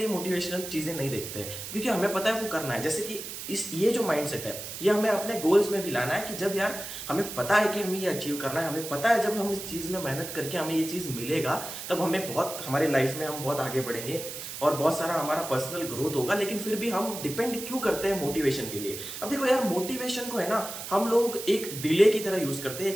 मोटिवेशनल चीज़ें नहीं देखते क्योंकि हमें पता है वो करना है। जैसे कि ये जो माइंडसेट है ये हमें अपने गोल्स में भी लाना है कि जब यार हमें पता है कि हमें ये अचीव करना है, हमें पता है जब हम इस चीज़ में मेहनत करके हमें ये चीज़ मिलेगा तब हमें बहुत, हमारी लाइफ में हम बहुत आगे बढ़ेंगे और बहुत सारा हमारा पर्सनल ग्रोथ होगा। लेकिन फिर भी हम डिपेंड क्यों करते हैं मोटिवेशन के लिए? अब देखो यार, मोटिवेशन को है ना हम लोग एक डिले की तरह यूज करते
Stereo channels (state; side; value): noise; right; hiss, 8 dB below the sound